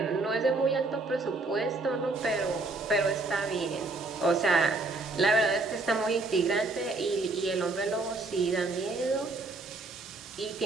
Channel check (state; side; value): quieter; left; 3.3 dB